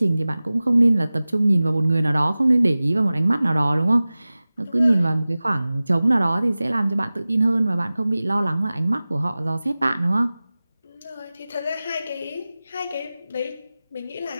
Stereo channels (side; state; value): both; inverted; correlation -0.97